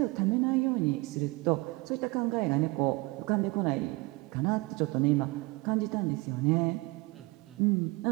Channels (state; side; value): quieter; left; 24.1 dB